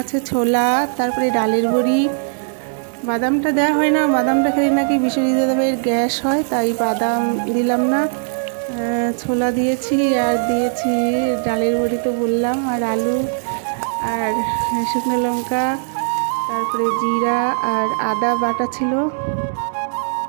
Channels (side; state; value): left; silent; digital silence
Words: আছে ছোলা, তারপরে ডালের বড়ি। বাদামটা দেওয়া হয় না, বাদামটা খেলে নাকি বিশ্বজিৎ দাদাভাইয়ের গ্যাস হয়, তাই বাদাম দিলাম না। ছোলা দিয়েছি, আর দিয়েছি ডালের বড়ি তো বললাম, আর আলু, আর শুকনো লঙ্কা, তারপরে জিরা আর আদা বাটা ছিল।